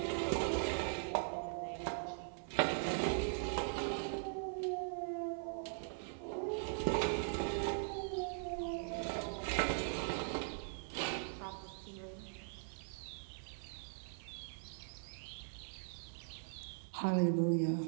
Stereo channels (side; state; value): left; silent; 50 dB below the other